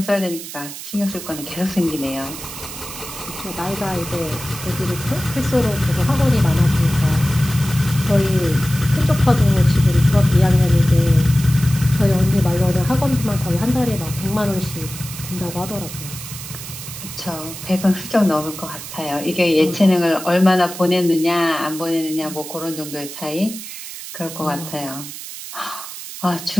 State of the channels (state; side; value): noise; right; hiss, 11 dB below the sound